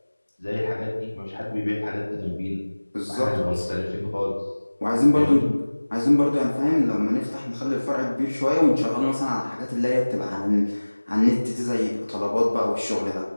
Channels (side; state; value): both; inverted; correlation -1.00